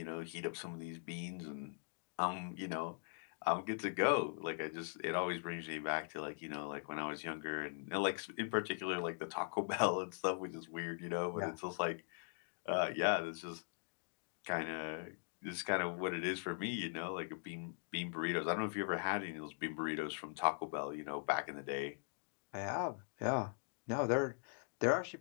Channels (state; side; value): silent; right; digital silence